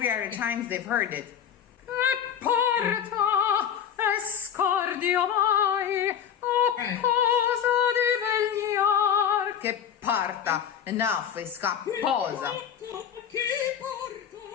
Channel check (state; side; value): quieter; right; 8.7 dB